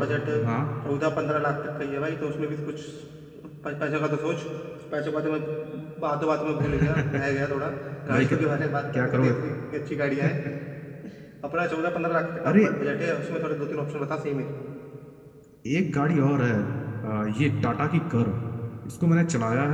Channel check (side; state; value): both; identical; correlation 1.00